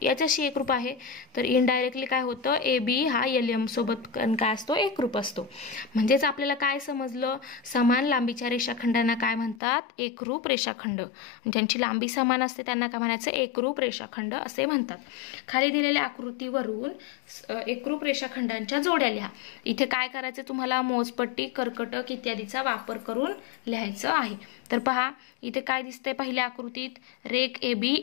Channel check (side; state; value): right; drops out; at 9.6 s